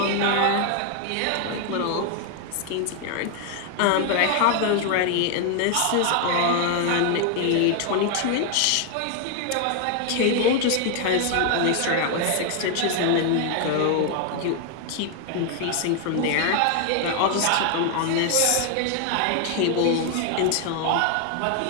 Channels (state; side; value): different; both; correlation 0.00